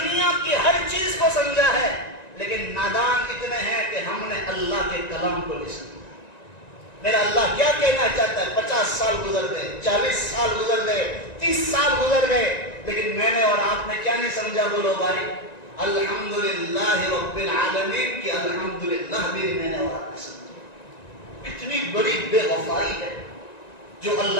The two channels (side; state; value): right; late; 1.9 ms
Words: کی ہر چیز کو سمجھا ہے، لیکن نادان اتنے ہیں کہ ہم نے اللہ کے کلام کو نہیں سمجھا۔ میرا اللہ کیا کہنا چاہتا ہے؟ 50 سال گزر گئے، 40 سال گزر گئے، 30 سال گزر گئے، لیکن میں نے اور آپ نے کیا نہیں سمجھا؟ بولو بھائی، الحمدللہ رب العالمین کی الحمدللہ بھی میں نے اور آپ نے سمجھا۔ کتنی بڑی بے وفائی ہے جو